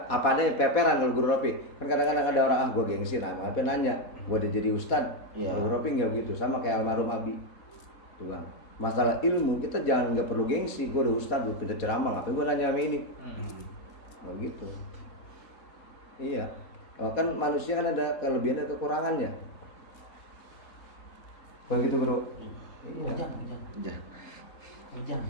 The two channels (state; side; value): late; right; 4.2 ms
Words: apa adanya peperan kalau Guru Ropi. Kan kadang-kadang ada orang gue gengsi, nah apa nanya, gue udah jadi ustad. Iya. Guru Ropi nggak begitu, sama kayak almarhum Abi. Tuh, Bang. Masalah ilmu kita jangan nggak perlu gengsi. Gue udah ustad, gue pintar ceramah, ngapain gue nanya sama ini? Nggak gitu. Iya. Oh, kan manusia kan ada kelebihan dan kekurangannya. Begitu Bro. Iya. Bujang. Udah. Bujang.